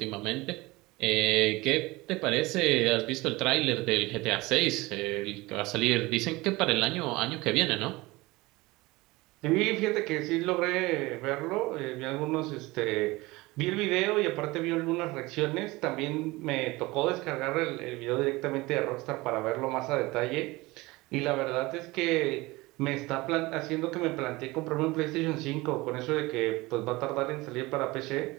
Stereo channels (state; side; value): quieter; left; 21.5 dB